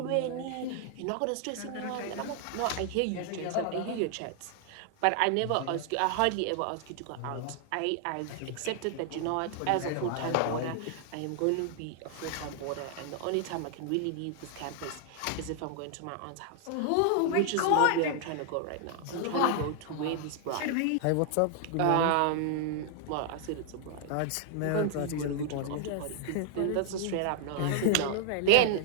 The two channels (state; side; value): different; both; correlation 0.00